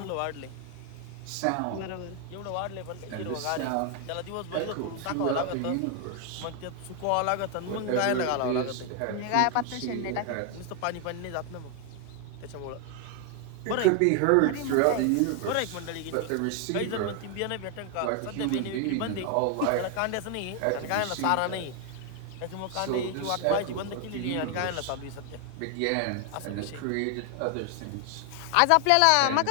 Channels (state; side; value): different; both; correlation 0.00